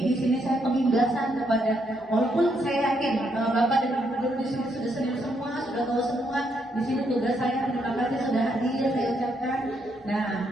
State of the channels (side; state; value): both; normal; correlation 0.76